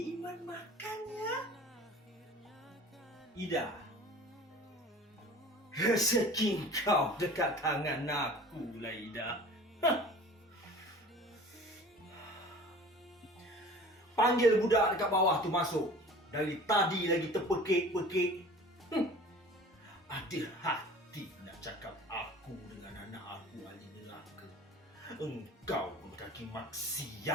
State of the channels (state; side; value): normal; both; correlation 0.43